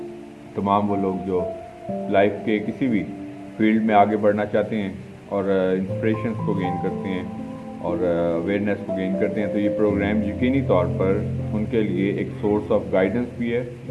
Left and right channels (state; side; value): identical; both; correlation 1.00